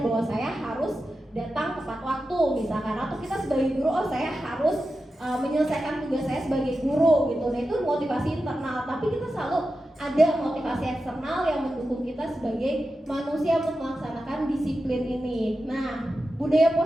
bahwa saya harus datang tepat waktu misalkan, atau kita sebagai guru, oh saya harus menyelesaikan tugas saya sebagai guru gitu. Nah, itu motivasi internal, tapi kita selalu ada motivasi eksternal yang mendukung kita sebagai manusia untuk melaksanakan disiplin ini. Nah, budaya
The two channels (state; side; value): normal; both; correlation 0.91